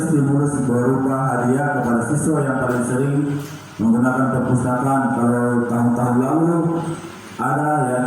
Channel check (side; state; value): both; identical; correlation 1.00